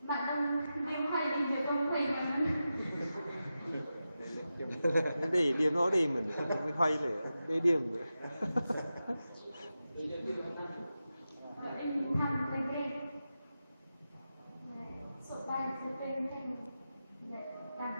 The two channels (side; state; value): both; inverted; correlation -0.91